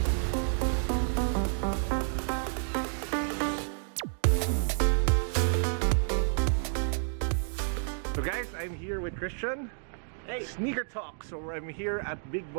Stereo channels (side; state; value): left; silent; digital silence